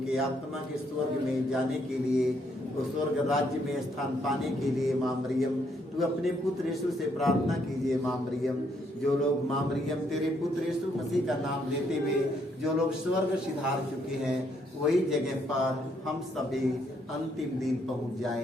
आत्मा के स्वर्ग में जाने के लिए, वो स्वर्ग राज्य में स्थान पाने के लिए माँ मरियम तू अपने पुत्र यीशु से प्रार्थना कीजिए। माँ मरियम, जो लोग माँ मरियम तेरे पुत्र यीशु मसीह का नाम लेते हुए जो लोग स्वर्ग सिधार चुके हैं, वही जगह पर हम सभी अंतिम दिन पहुंच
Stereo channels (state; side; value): normal; both; correlation 0.72